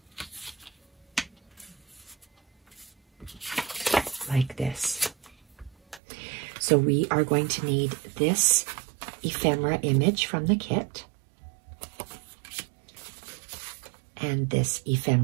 like this. So we are going to need this ephemera image from the kit and this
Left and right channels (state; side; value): drops out; left; at 6.0 s